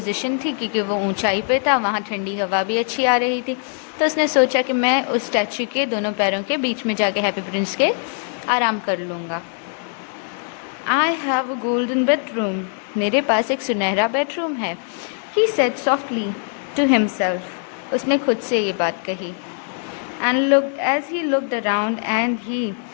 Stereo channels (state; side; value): silent; right; 57 dB below the other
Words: थी क्योंकि वो ऊंचाई पे था, वहाँ ठंडी हवा भी अच्छी आ रही थी। तो उसने सोचा कि मैं उस स्टैच्यू के दोनों पैरों के बीच में जाके हैप्पी प्रिंस के आराम कर लूँगा। I have a golden bedroom. मेरे पास एक सुनहरा बेडरूम है. He said softly to himself. उसने खुद से ये बात कही. And looked as he looked around and he